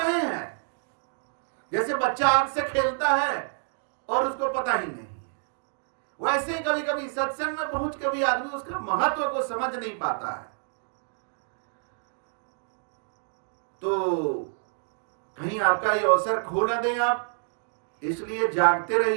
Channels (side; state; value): left; silent; digital silence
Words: हैं, जैसे बच्चा आग से खेलता है और उसको पता ही नहीं है, वैसे ही कभी कभी सत्संग में पहुंच के भी आदमी उसका महत्व को समझ नहीं पाता है। तो कहीं आपका ये अवसर खो न दें आप, इसलिए जागते